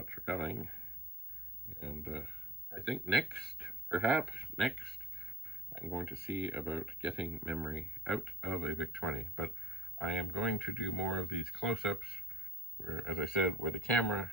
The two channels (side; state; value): both; normal; correlation 0.54